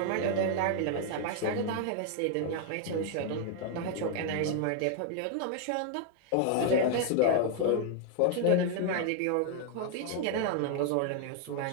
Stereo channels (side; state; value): both; different; correlation 0.00